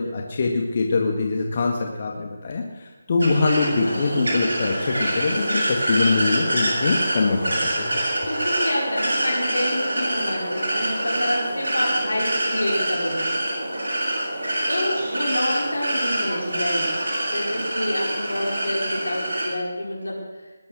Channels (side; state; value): both; inverted; correlation -0.90